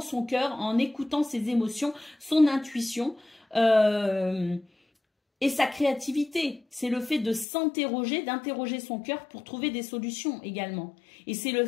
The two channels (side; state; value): right; drops out; at 7.5 s